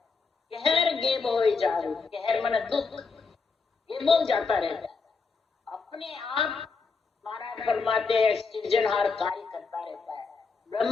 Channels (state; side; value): quieter; right; 4.6 dB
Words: कहर गेब हो जावे, कहर मन दुख, गेबो जाता रहता है, अपने आप महाराज फरमाते हैं सृजनहार कार्य करता रहता है।